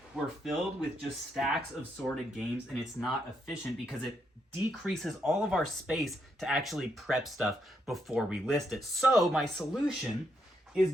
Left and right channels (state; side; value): normal; both; correlation 0.78